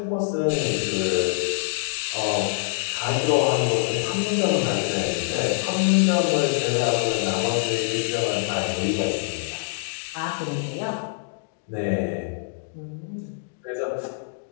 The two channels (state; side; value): silent; right; digital silence